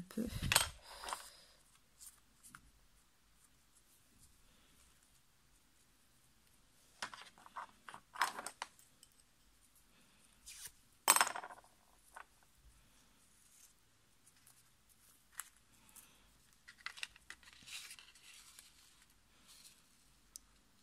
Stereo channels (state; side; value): identical; both; correlation 1.00